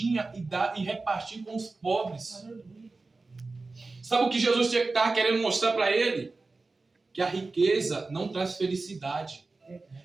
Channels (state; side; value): quieter; left; 3.6 dB